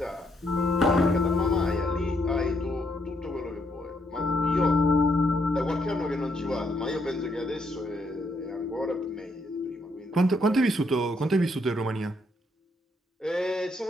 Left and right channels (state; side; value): normal; both; correlation 0.74